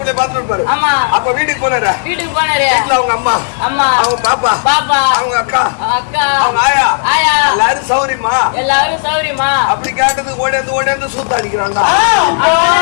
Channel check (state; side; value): silent; right; digital silence